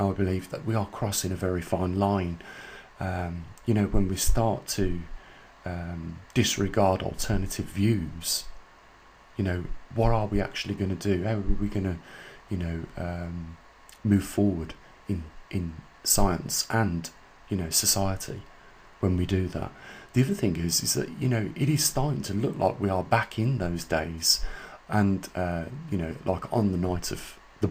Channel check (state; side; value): identical; both; correlation 1.00